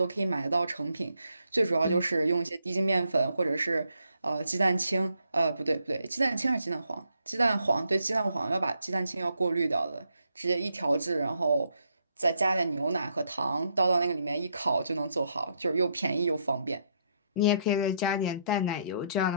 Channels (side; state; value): both; inverted; correlation -0.75